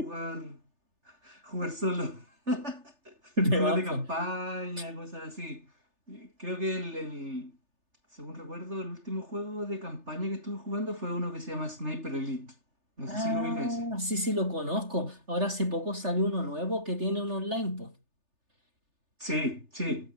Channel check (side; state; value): left; late; 3.3 ms